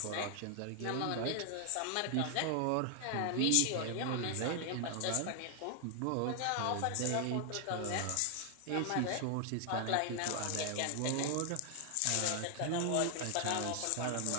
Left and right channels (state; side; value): different; both; correlation 0.00